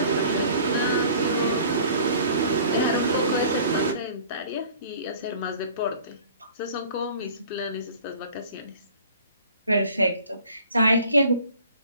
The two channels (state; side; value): inverted; both; correlation -0.48